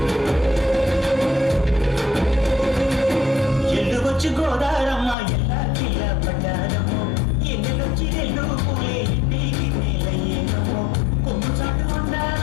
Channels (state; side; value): drops out; right; at 5.2 s